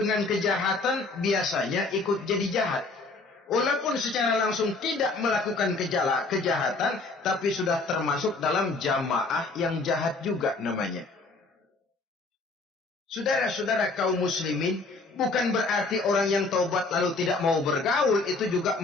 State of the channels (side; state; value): right; quieter; 3.6 dB